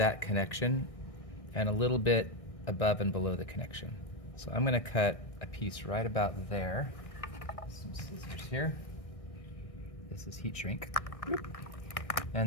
connection and a little bit above and below the connection. So I'm going to cut a piece right about there. Some scissors here. This is heat shrink.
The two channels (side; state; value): right; late; 1.6 ms